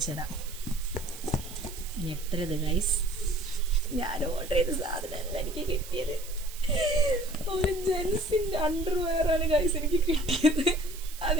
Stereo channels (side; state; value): right; noise; hiss, 15 dB below the sound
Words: തരാം. ഞെട്ടരുത് ഗൈസ്, ഞാൻ ഓർഡർ ചെയ്ത സാധനമല്ല എനിക്ക് കിട്ടിയത്. ഒരു ജെൻസിൻ്റെ അണ്ടർവെയറാണ് ഗൈസ് എനിക്ക് കിട്ടിയത്.